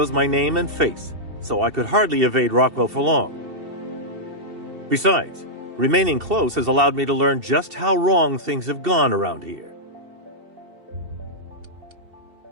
my name and face, so I could hardly evade Rockwell for long. Besides, remaining close has allowed me to learn just how wrong things have gone around here.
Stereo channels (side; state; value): left; late; 2.7 ms